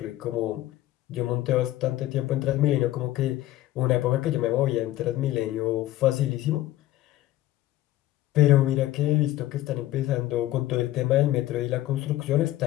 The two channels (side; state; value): right; quieter; 15.1 dB